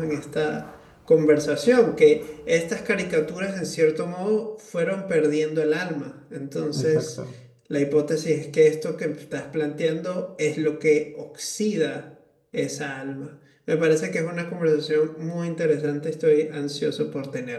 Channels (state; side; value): identical; both; correlation 1.00